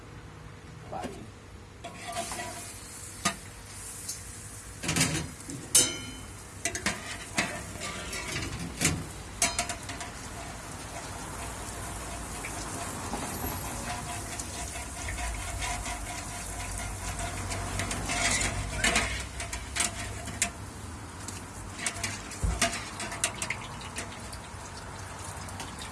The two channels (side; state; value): both; identical; correlation 1.00